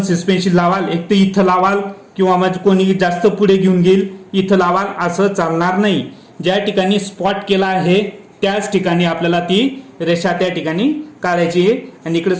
सस्पेन्शन लावाल, एक तर इथं लावाल किंवा मग कोणी जास्त पुढे घेऊन गेल इथं लावाल, असं चालणार नाही. ज्या ठिकाणी स्पॉट केला आहे त्याच ठिकाणी आपल्याला ती रेषा त्या ठिकाणी काढायची आहे आणि इकडे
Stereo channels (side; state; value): both; identical; correlation 1.00